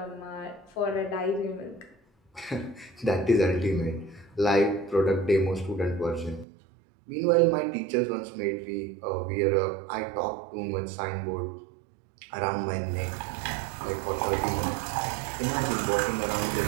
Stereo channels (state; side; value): drops out; left; at 6.5 s